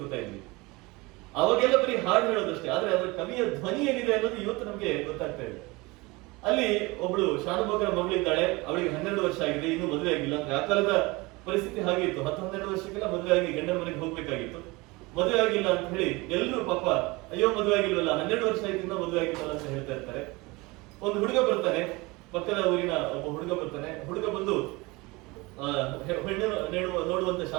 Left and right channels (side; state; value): left; quieter; 23.8 dB